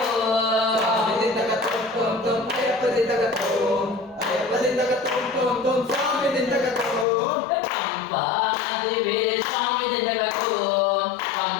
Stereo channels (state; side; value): drops out; right; at 7.1 s